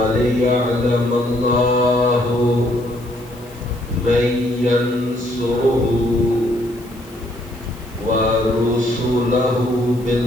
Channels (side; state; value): left; noise; hiss, 24 dB below the sound